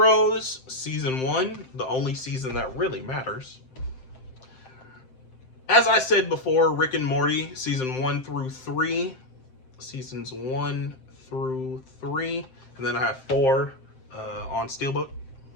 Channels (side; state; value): right; late; 7.7 ms